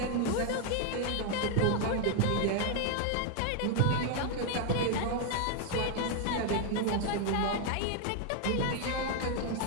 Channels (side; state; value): both; different; correlation 0.00